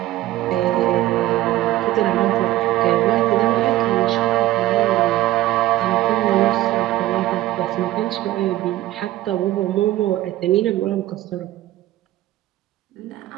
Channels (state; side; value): quieter; left; 15.4 dB